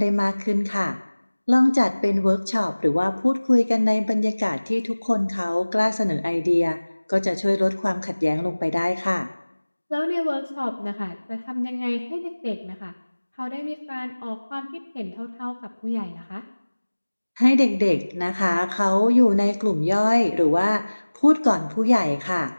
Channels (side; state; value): both; inverted; correlation -1.00